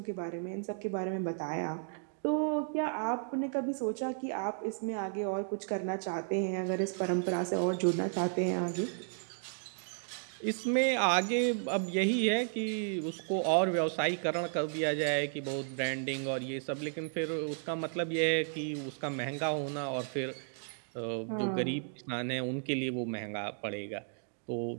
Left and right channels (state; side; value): silent; left; digital silence